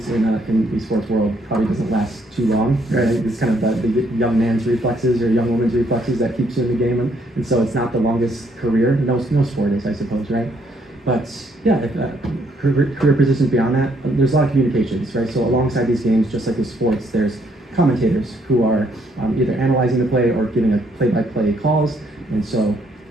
in the esports world probably doesn't last too long, right? It's kind of the young man's reflexes or young woman's reflexes that keeps you in the game, and so it's not the longest career. No sport is, I suppose, right? But career positions beyond that, there's a lot of communications, right? So alongside these games, just like with sports, there's commentators who are either analyzing the play or giving a play-by-play calls, and so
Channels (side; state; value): both; normal; correlation 0.70